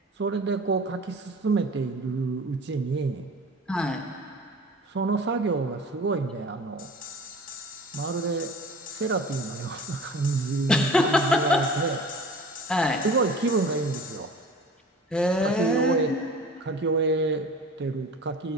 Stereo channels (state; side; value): normal; both; correlation 0.41